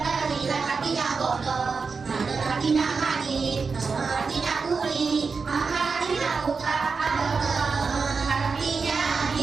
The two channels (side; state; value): left; quieter; 4.9 dB